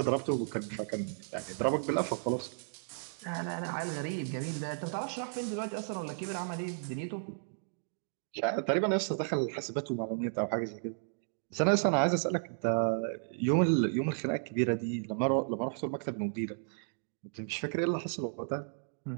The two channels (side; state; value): left; silent; digital silence